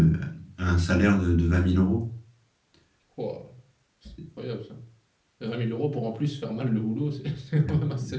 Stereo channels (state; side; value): identical; both; correlation 1.00